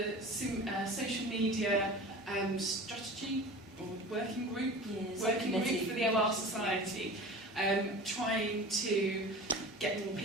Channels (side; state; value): both; normal; correlation 0.37